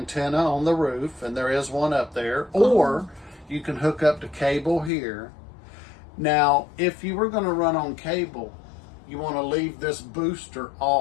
on the roof, and there is one up there, or you can hook up to cable here. Now, if you were going to run on cable, you want to leave this booster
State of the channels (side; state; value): right; drops out; at 4.9 s